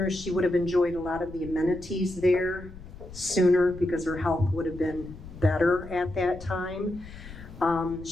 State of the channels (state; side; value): noise; left; rumble, 15 dB below the sound